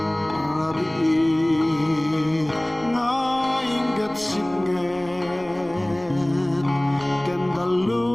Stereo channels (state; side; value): noise; left; rumble, 24 dB below the sound